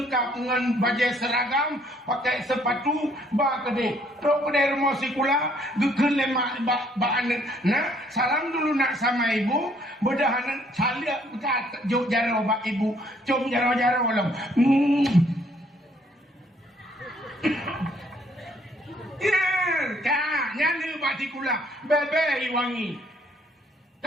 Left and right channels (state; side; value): normal; both; correlation 0.65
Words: dengan baju seragam pakai sepatu ba kede tok kede rumah sikula gekeun lemak ba anak nah salam dulu nak sama ibu bedahan salia kat juk jaro ba ibu cum jaro-jaro lem ya nyani ba sikula bebe wangi